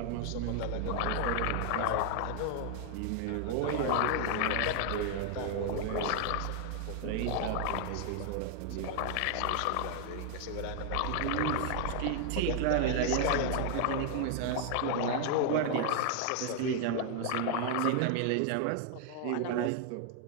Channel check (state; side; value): different; both; correlation 0.00